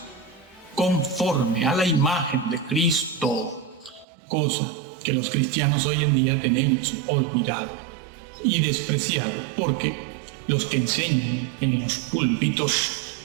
conforme a la imagen de Cristo, cosa que los cristianos hoy en día tenemos olvidado y despreciado, porque los que enseñan en los púlpitos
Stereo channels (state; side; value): drops out; left; at 4.0 s